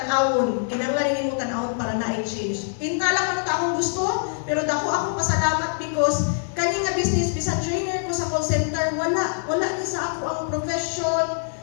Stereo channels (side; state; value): right; silent; 63 dB below the other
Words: para na i-change. Pinta lang ano ta akong gusto, pero dako ako pasalamat because kani nga business bisan trainer ko sa call center, wala ni sa ako ang profession,